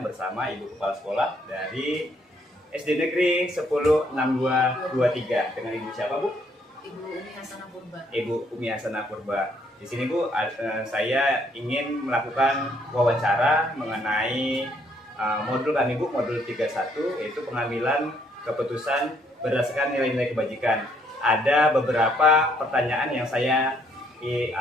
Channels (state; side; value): normal; both; correlation 0.68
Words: bersama Ibu Kepala Sekolah dari SD Negeri 106223. Dengan Ibu siapa, Bu? Ibu Umi Hasanah Purba. Ibu Umi Hasanah Purba. Di sini, Bu, saya ingin melakukan wawancara mengenai modul kami, Bu, modul 31, yaitu pengambilan keputusan berdasarkan nilai-nilai kebajikan. Ada beberapa pertanyaan yang saya